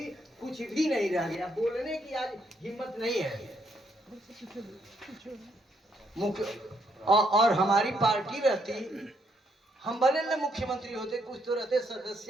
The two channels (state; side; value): normal; both; correlation 0.73